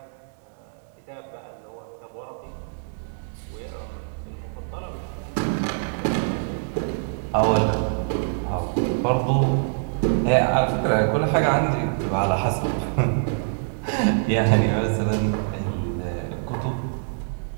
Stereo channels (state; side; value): silent; left; digital silence